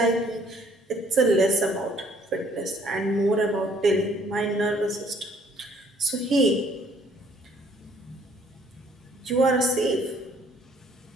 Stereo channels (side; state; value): both; normal; correlation 0.61